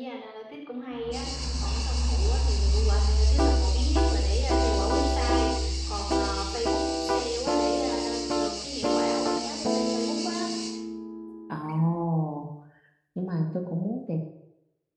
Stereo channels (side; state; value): both; identical; correlation 1.00